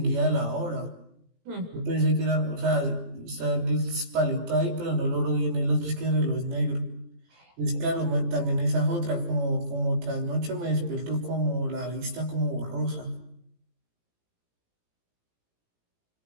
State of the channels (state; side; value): late; left; 18 ms